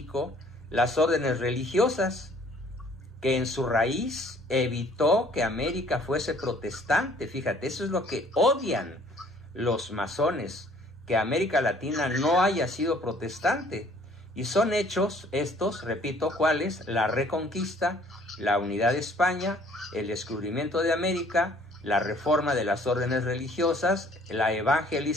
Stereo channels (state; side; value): normal; both; correlation 0.57